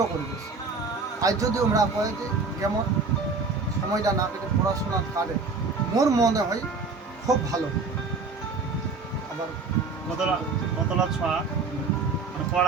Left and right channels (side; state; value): left; quieter; 4.2 dB